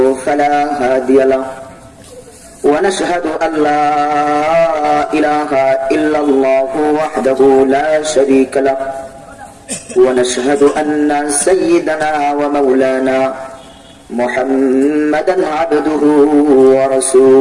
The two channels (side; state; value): both; identical; correlation 1.00